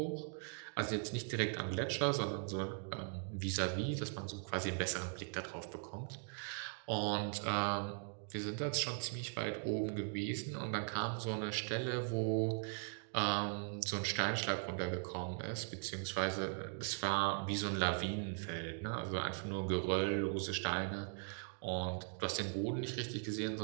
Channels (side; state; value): left; silent; 51 dB below the other